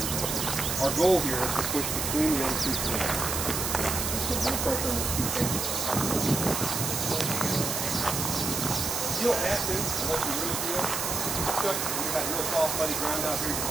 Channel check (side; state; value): right; noise; hiss, 1 dB below the sound